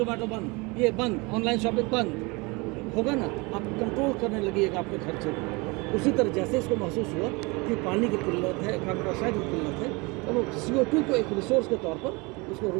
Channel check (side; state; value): left; quieter; 26.6 dB